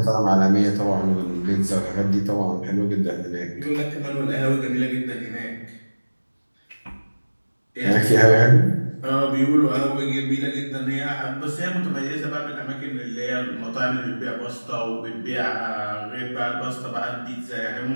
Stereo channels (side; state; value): both; inverted; correlation -1.00